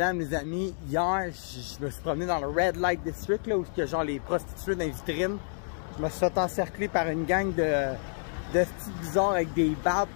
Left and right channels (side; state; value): right; silent; digital silence